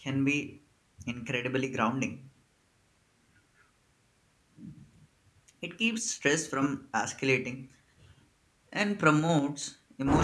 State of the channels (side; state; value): both; identical; correlation 1.00